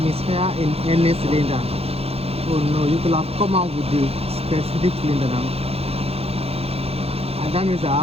Misfire in any cylinder. Oh no, you could have come out with the specific cylinder now. And that means I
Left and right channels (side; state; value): left; late; 0.29 ms